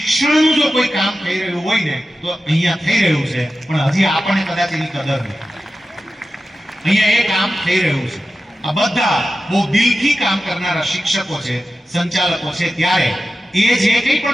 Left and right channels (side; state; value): both; normal; correlation 0.93